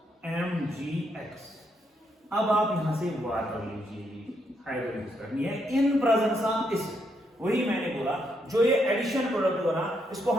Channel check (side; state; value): both; normal; correlation 0.77